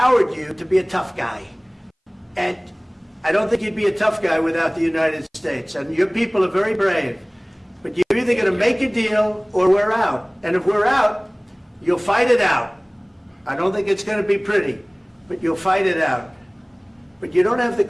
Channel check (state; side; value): identical; both; correlation 1.00